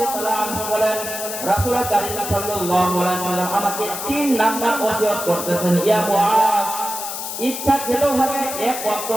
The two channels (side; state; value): left; noise; hiss, 6 dB below the sound